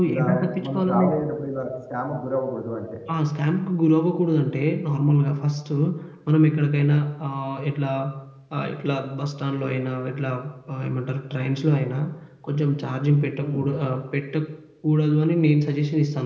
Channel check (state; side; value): identical; both; correlation 1.00